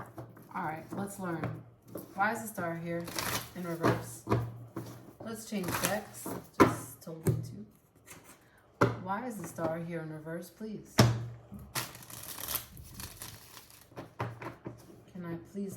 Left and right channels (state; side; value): identical; both; correlation 1.00